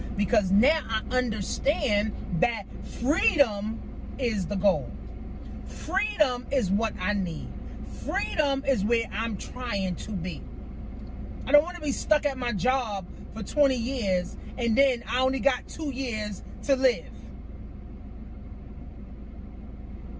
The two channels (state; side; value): identical; both; correlation 1.00